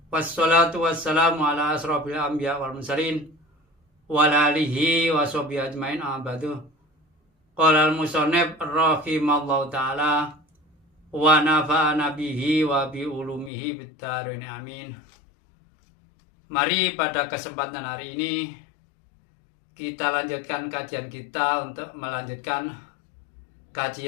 Wassalatu wassalamu ala asrofil anbiya wal mursalin wa ala alihi wa sahbihi ajmain abadu. Qala al-musannif rahimallahu taala wa nafa'ana bihi wa bi ulumihi bid-dharain amin. Mari pada kesempatan hari ini kita lanjutkan kajian kita untuk melanjutkan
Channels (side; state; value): right; drops out; at 13.5 s